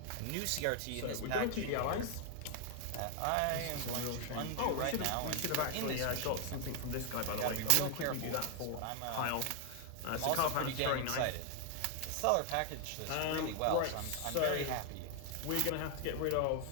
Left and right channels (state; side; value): different; both; correlation 0.00